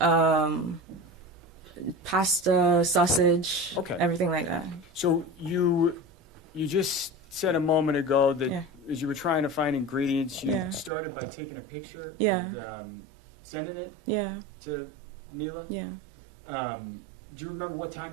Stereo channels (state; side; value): drops out; left; at 10.9 s